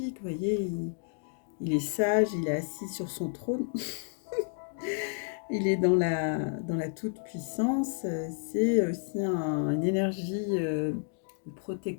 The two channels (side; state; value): right; silent; 57 dB below the other